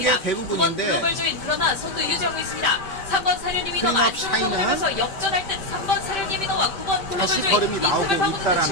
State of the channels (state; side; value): late; right; 5.1 ms